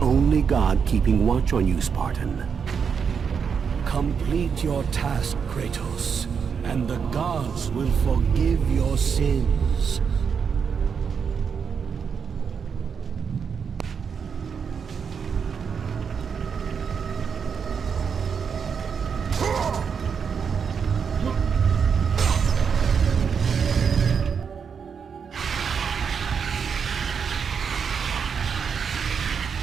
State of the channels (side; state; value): left; quieter; 6.5 dB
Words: god keeping watch on you, Spartan. Complete your task, Kratos, and the gods will forgive your sins.